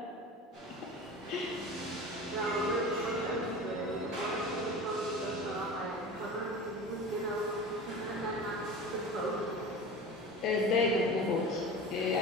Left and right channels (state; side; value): normal; both; correlation 0.33